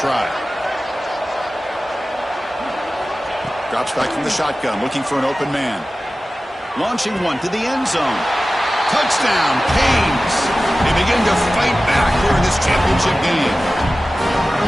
Drops back from the shotgun, looking for an open man. Launching one to the end zone. Touchdown, Canes. They begin to fight back here in this championship game.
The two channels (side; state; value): both; normal; correlation 0.96